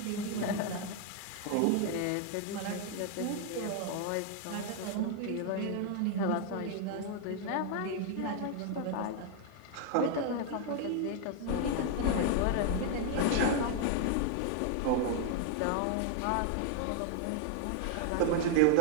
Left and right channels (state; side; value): different; both; correlation 0.00